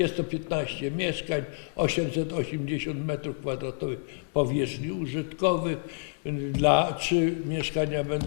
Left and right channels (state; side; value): silent; right; digital silence